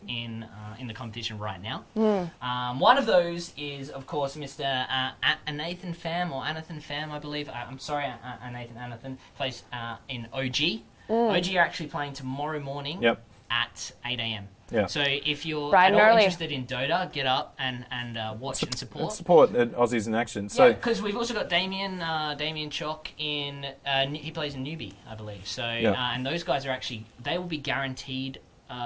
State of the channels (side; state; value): both; identical; correlation 1.00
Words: in the competition right now. One of those is, of course, Mr. Anathan Pham, I believe. I'm sorry, Anathan plays in OG. OG are actually playing tomorrow morning at 8 a.m. Yeah. So if you're Bright at all and early. interested in Dota, get up and watch and support. Support Aussies in action. So because we've also got Damien Chalk in. He plays in Newbie, I believe. So and those guys are actually they will be guaranteed